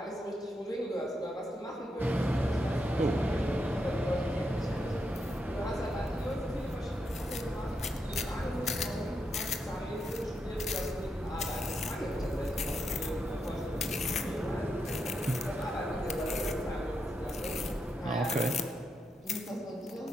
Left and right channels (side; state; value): both; normal; correlation 0.83